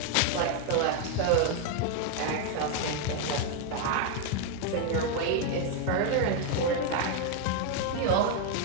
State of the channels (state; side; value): different; both; correlation 0.01